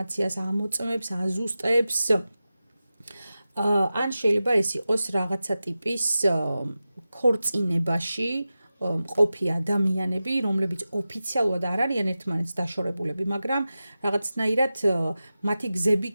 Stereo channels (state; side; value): inverted; both; correlation -0.94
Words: ამოწმებს, აზუსტებს, ან შეიძლება ეს იყოს რაღაცა ტიპის ქორწინებაში ყოფი ადამიანები, რომლებიც ოფიციალურად არ არიან ერთმანეთს დაშორებულები, მაგრამ რაღაცნაირად მათი გზები